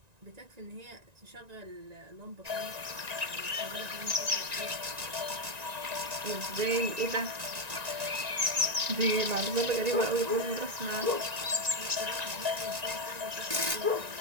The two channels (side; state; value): left; late; 1.9 ms